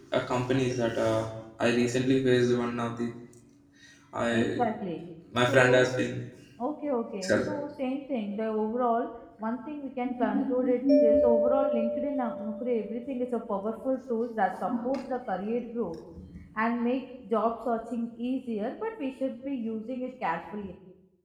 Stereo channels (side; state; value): both; identical; correlation 1.00